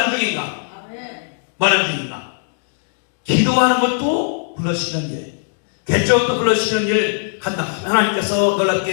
중인가? 뭐 하는 중인가? 기도하는 것도 불러시키는 일, 개척도 불러시키는 일 한다. 하나님께서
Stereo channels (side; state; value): right; silent; digital silence